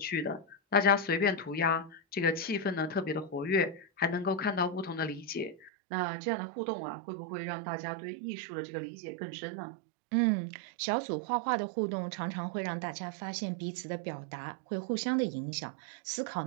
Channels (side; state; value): left; drops out; at 5.7 s